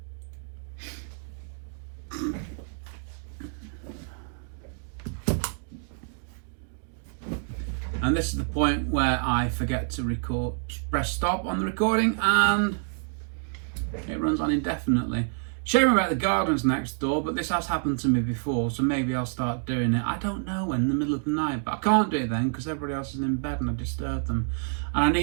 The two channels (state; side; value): silent; left; 60 dB below the other